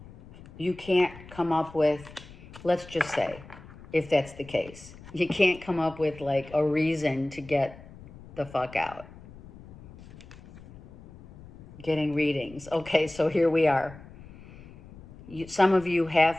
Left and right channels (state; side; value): noise; left; rumble, 19 dB below the sound